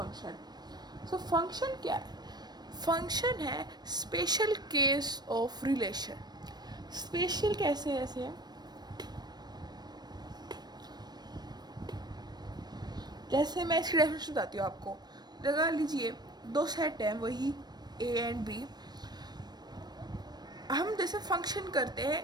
फंक्शन क्या है? फंक्शन है special case of relation. Special कैसे ऐसे? जैसे मैं इसकी डेफिनेशन बताती हूँ आपको। लगा लीजिए दो सेट हैं, वही ए एंड बी। हम जैसे फंक्शन करते हैं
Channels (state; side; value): late; left; 0.20 ms